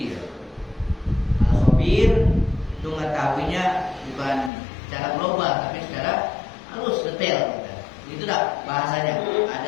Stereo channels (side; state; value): right; drops out; at 4.5 s